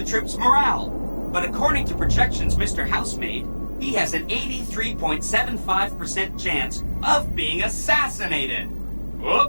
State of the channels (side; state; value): both; inverted; correlation -1.00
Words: troops' morale. But according to projections Mr. House made, he has an 83.75% chance of being assassinated.